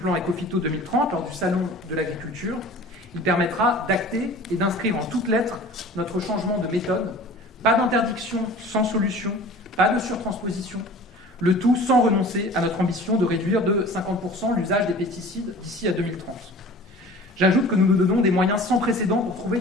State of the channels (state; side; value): normal; both; correlation 0.43